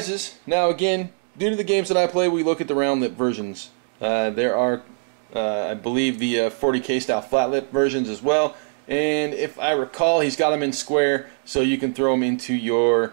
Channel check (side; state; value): left; silent; 58 dB below the other